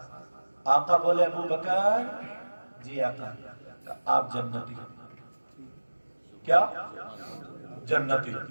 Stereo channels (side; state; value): both; inverted; correlation -1.00